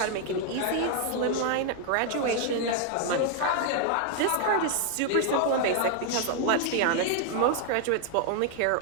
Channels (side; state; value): both; different; correlation 0.00